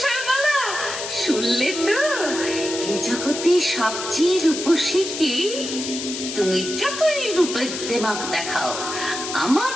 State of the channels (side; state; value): left; noise; hiss, 6 dB below the sound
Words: শুনলে তো? এই জগতে সবচেয়ে রূপসী কি? তুমি যতই রূপের দেমাক দেখাও, আমার